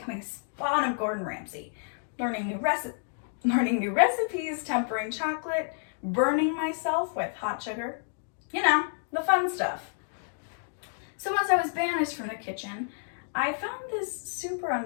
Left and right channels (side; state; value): right; silent; digital silence